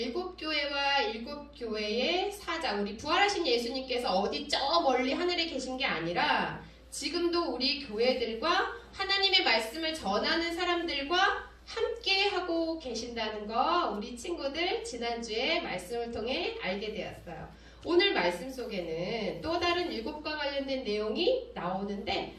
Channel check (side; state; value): both; identical; correlation 1.00